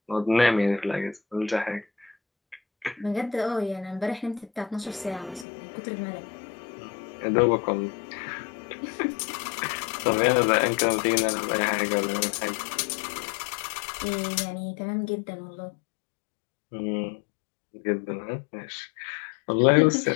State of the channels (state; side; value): drops out; right; at 5.5 s